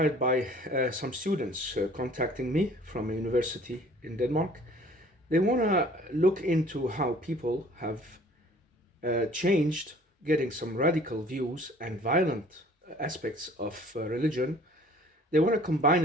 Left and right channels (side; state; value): both; normal; correlation 0.52